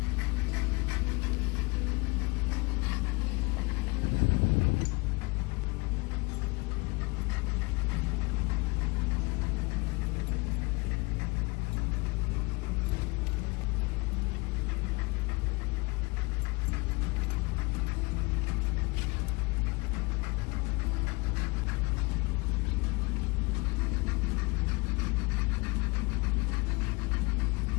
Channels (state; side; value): quieter; right; 25.9 dB